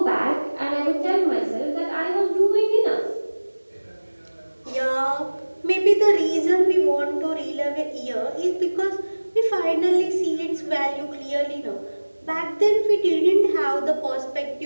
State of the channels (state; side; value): inverted; both; correlation -1.00